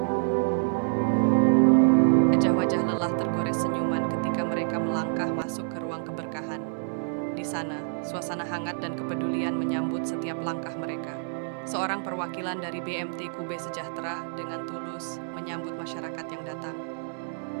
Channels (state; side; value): silent; left; digital silence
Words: Wajah-wajah lelah tergores senyuman ketika mereka melangkah masuk ke ruang keberkahan. Di sana, suasana hangat dan kepedulian menyambut setiap langkah mereka. Seorang perwakilan dari BMT Kube Sejahtera dengan tulus menyambut masyarakat yang datang.